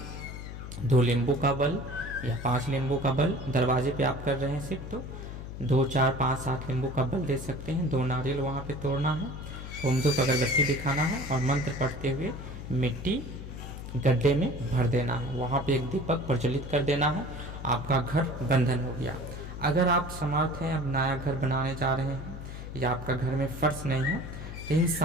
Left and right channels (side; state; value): left; noise; hum, 10 dB below the sound